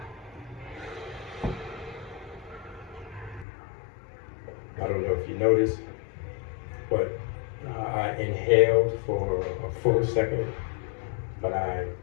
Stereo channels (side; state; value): right; drops out; at 3.5 s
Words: I don't know if you noticed, but I inhaled for a full second, but I